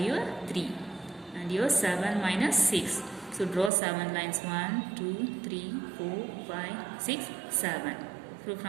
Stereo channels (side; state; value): left; drops out; at 3.7 s